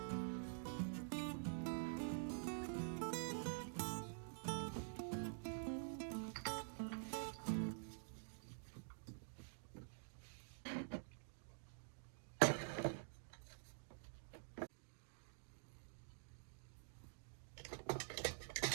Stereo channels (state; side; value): silent; left; digital silence